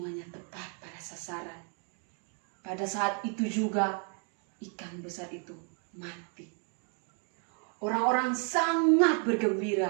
tepat pada sasaran. Pada saat itu juga ikan besar itu mati. Orang-orang sangat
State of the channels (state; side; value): quieter; left; 39.9 dB